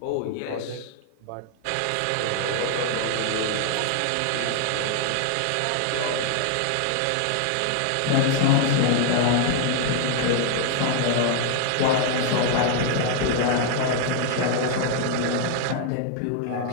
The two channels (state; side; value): different; both; correlation 0.00